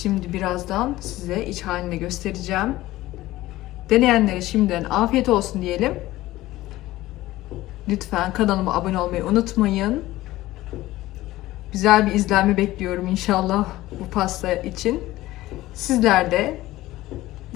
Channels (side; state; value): right; quieter; 16.8 dB